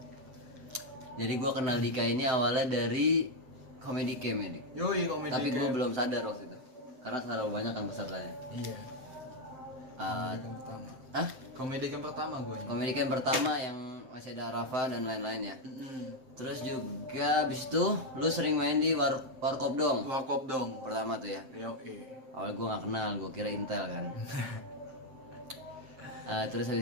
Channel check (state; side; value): late; left; 7.7 ms